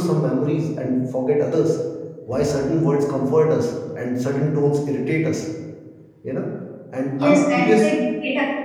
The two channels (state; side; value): identical; both; correlation 1.00